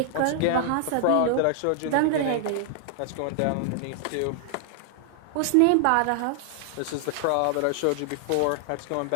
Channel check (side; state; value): both; different; correlation 0.00